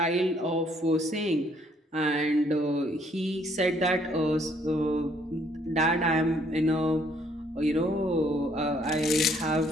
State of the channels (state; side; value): normal; both; correlation 0.66